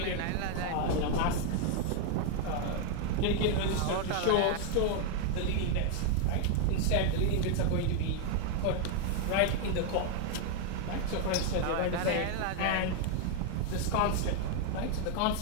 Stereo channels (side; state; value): both; different; correlation 0.01